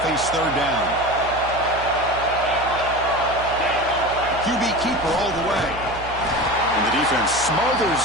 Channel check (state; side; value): noise; right; hum, 13 dB below the sound